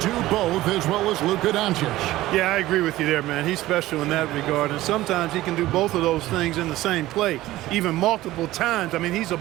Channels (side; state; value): left; quieter; 16.4 dB